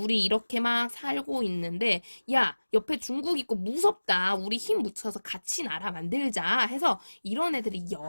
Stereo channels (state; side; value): inverted; both; correlation -1.00